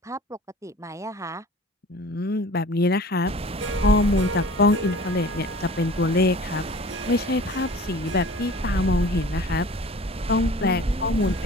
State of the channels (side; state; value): both; normal; correlation 0.44